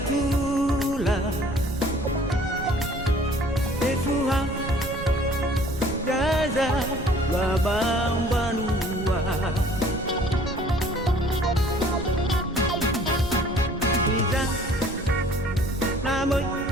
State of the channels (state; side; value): noise; right; rumble, 10 dB below the sound